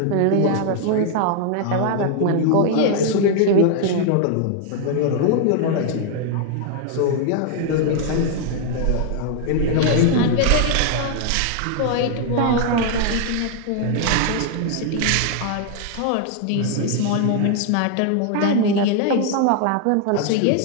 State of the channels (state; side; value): different; both; correlation 0.00